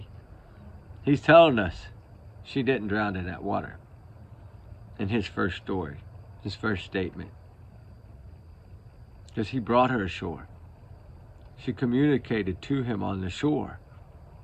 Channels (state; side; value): identical; both; correlation 1.00